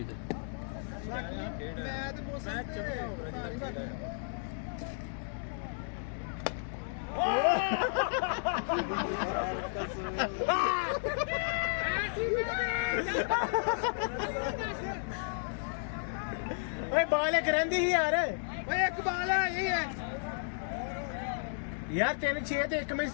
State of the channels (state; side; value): silent; right; digital silence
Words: ਮੈਂ ਤੇ ਮੋਸ਼ਨ ਓਏ ਬਾਲ ਇੱਕ ਰਹਿੰਦੀ ਸੀ ਯਾਰ ਓਏ ਇੱਕ ਬਾਲ ਹੈ ਇਹ ਹੈ यार तेरे 6 ਤੇ 1 में